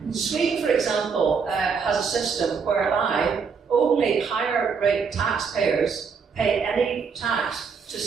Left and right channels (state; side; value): quieter; left; 5.7 dB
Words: Sweden, for example, has a system whereby only higher rate taxpayers pay any tax to